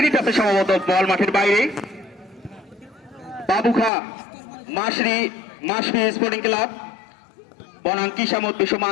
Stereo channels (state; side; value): drops out; right; at 3.9 s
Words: টাচে সম্ভবত বল মাঠের বাইরে। বাবুখা মাসরি স্পোর্টিং ক্লাব বনাম কিসামত বিশ্ব